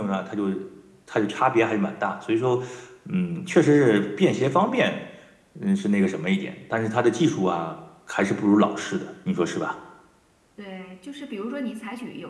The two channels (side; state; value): both; identical; correlation 1.00